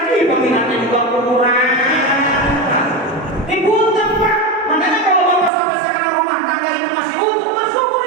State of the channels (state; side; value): drops out; left; at 5.5 s